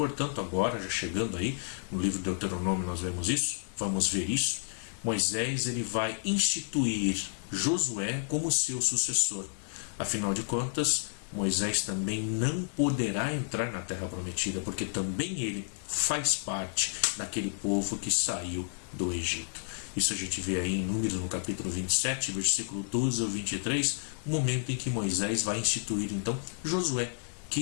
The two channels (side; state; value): right; silent; digital silence